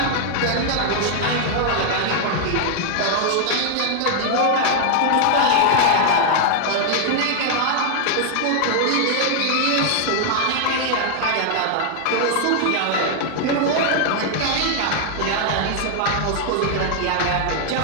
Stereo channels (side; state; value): both; different; correlation 0.00